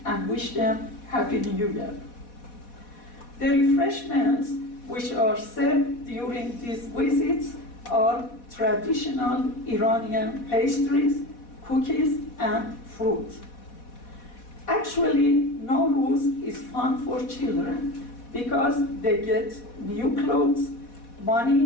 and wish them Happy New Year. The refreshments which are served during these visits are traditional Iranian pastries, cookies, and fruit. Actually, NowRuz is fun for children because they get new clothes,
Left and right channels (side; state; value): right; late; 4.1 ms